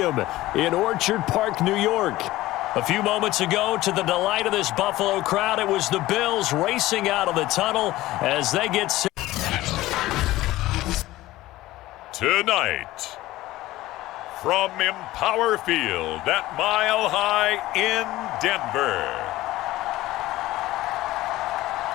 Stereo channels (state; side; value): quieter; right; 17.0 dB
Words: in Orchard Park, New York. A few moments ago, to the delight of this Buffalo crowd, it was the Bills racing out of the tunnel as they get set. Tonight, from Empower Field at Mile High in Denver,